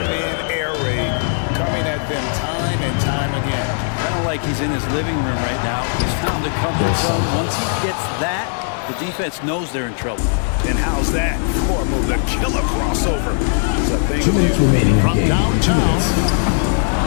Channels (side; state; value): right; silent; digital silence